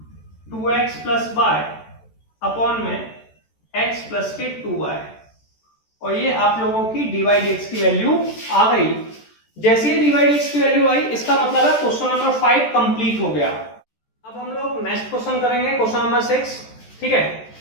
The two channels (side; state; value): right; late; 14 ms